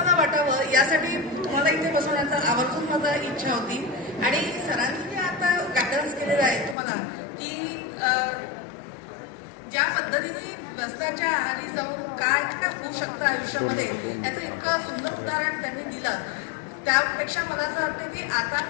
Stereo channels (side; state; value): right; drops out; at 6.8 s